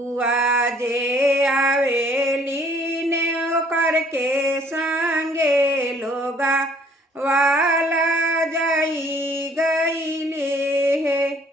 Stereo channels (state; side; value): normal; both; correlation 0.60